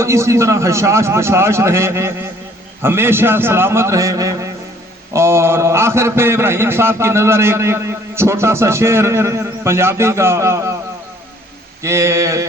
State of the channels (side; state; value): both; normal; correlation 0.59